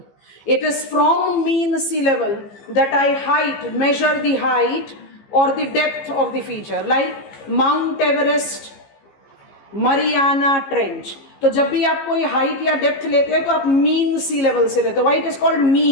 It is from mean sea level that I measure the height or the depth of the feature, like Mount Everest, Mariana Trench. तो जब भी आप कोई height या depth लेते हैं तो आप मीन सी लेवल से लेते हो। Why it is called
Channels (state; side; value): late; right; 15 ms